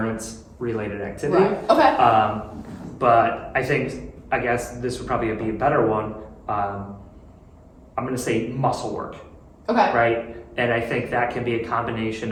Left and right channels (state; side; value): identical; both; correlation 1.00